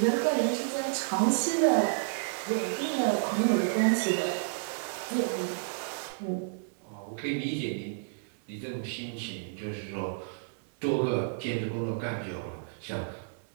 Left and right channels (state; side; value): silent; left; digital silence